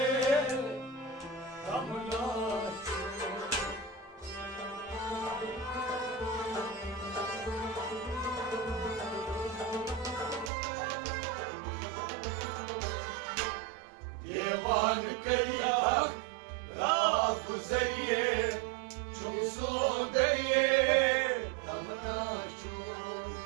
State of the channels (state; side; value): drops out; left; at 10.5 s